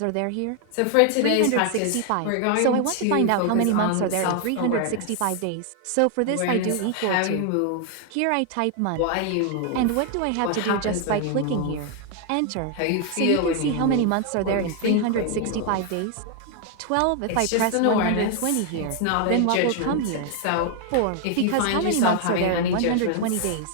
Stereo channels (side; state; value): both; different; correlation 0.00